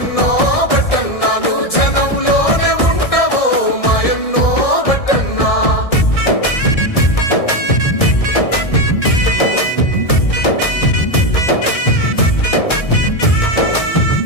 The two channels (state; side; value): late; right; 1.6 ms